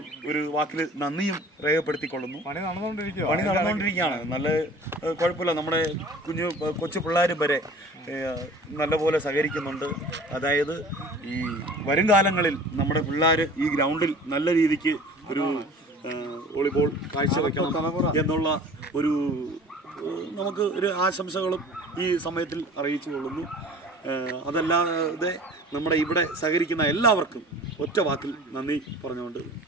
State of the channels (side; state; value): both; normal; correlation 0.45